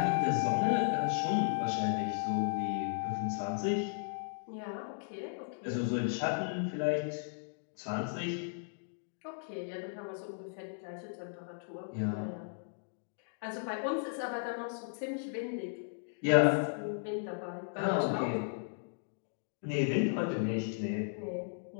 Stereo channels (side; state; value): right; silent; digital silence